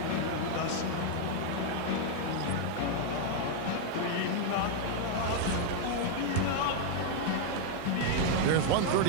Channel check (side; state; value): both; different; correlation 0.00